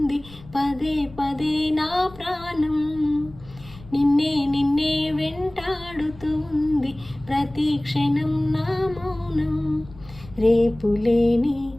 పదే పదే నా ప్రాణం. నిన్నే నిన్నే వెంటాడుతూ ఉంది ప్రతి క్షణం నా మౌనం. రేపులేని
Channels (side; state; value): left; noise; rumble, 20 dB below the sound